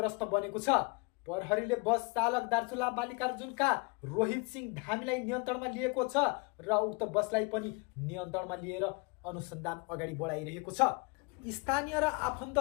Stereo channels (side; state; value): right; quieter; 30.2 dB